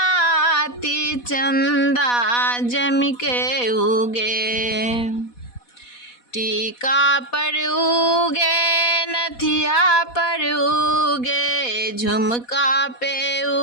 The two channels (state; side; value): late; right; 4.1 ms